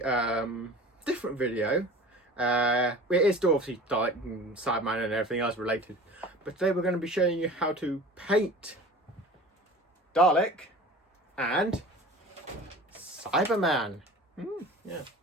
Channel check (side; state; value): both; normal; correlation 0.40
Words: different video. It is still obviously Dalek and Cyberman and everything else related, but today we're going to be showing you how to paint Dalek and Cyberman. Yeah.